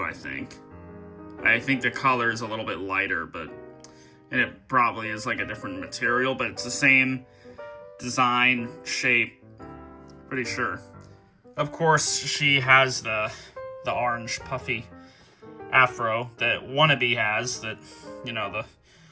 I think. I think the color is a little bit lighter, and it probably is a different material, but it's the same design, shape, pretty sure. Of course, she has the orange puffy afro that Wannabe has, that, you know, the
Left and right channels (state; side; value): identical; both; correlation 1.00